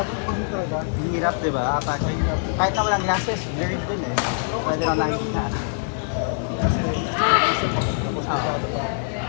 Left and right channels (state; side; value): silent; right; digital silence